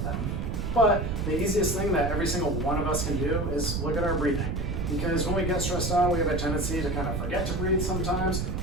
them. But the easiest thing that every single one of us can do is look at our breathing. Because when we get stressed out, we have a tendency to kind of forget to breathe sometimes,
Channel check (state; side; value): noise; right; rumble, 1 dB below the sound